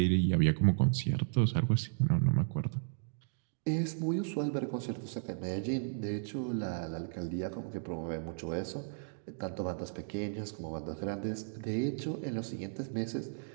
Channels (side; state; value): left; silent; digital silence